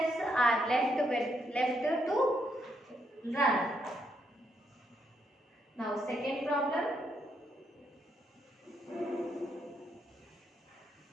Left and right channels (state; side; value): normal; both; correlation 0.77